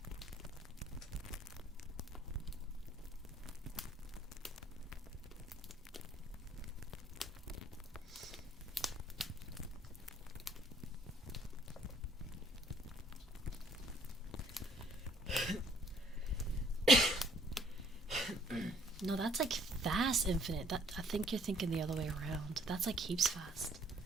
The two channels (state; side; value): normal; both; correlation 0.61